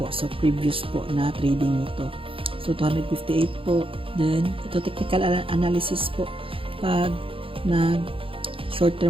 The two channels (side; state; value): left; late; 0.26 ms